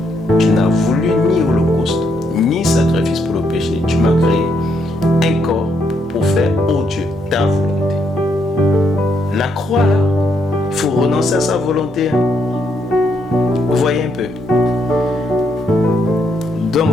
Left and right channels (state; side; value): normal; both; correlation 0.75